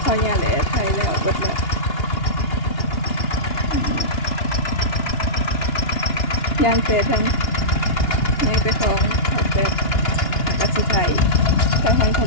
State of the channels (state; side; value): late; right; 2.8 ms